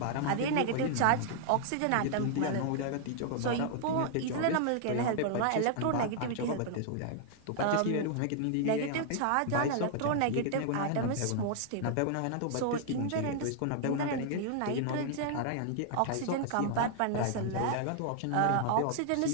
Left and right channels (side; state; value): both; different; correlation -0.01